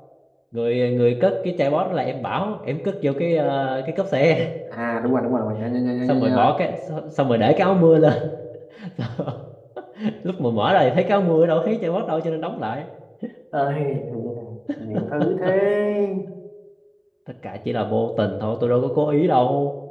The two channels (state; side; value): identical; both; correlation 1.00